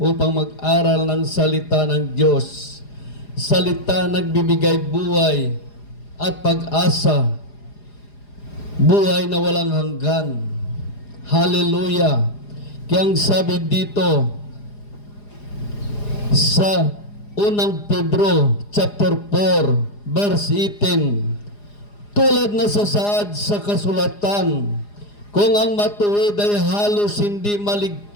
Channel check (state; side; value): late; right; 4.9 ms